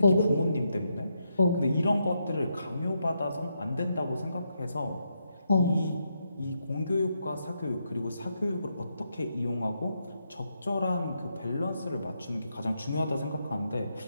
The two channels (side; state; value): both; inverted; correlation -0.81